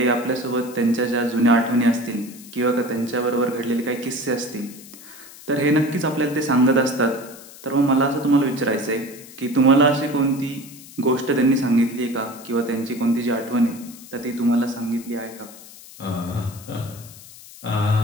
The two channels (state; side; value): noise; left; hiss, 18 dB below the sound